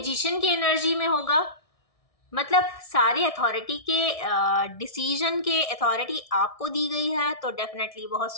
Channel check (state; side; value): late; right; 1.6 ms